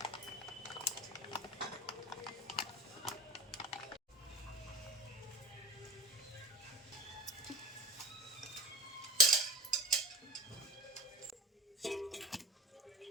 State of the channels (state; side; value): normal; both; correlation 0.37